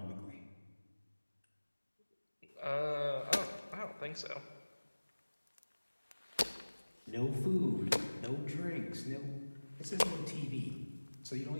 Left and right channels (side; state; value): both; inverted; correlation -1.00